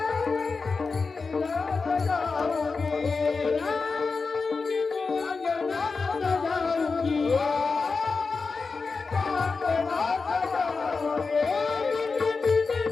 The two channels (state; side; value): quieter; right; 4.5 dB